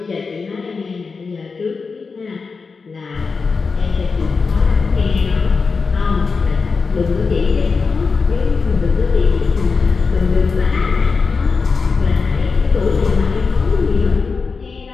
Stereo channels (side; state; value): right; quieter; 4.7 dB